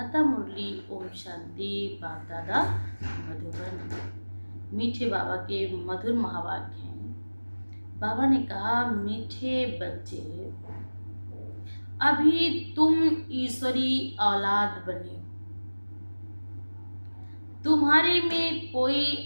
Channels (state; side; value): inverted; both; correlation -1.00